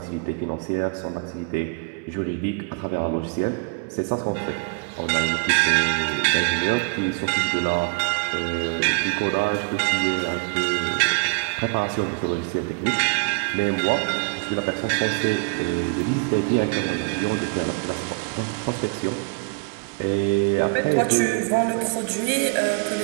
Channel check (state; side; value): quieter; left; 34.6 dB